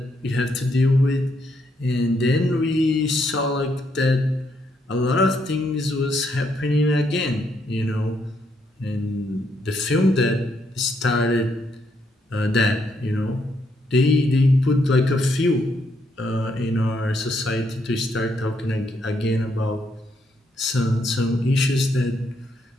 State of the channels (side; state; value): both; normal; correlation 0.75